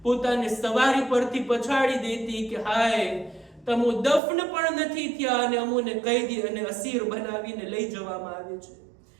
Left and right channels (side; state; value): left; drops out; at 4.2 s